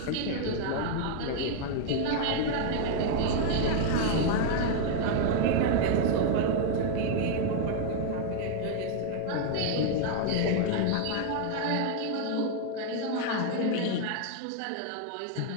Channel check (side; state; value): both; different; correlation 0.00